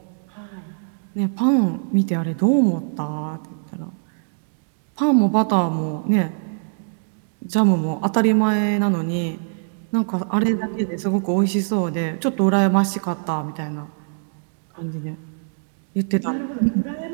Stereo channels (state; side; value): silent; left; digital silence